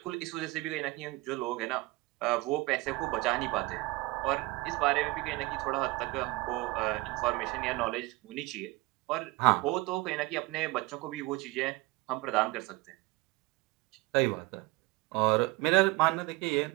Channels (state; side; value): quieter; left; 22.6 dB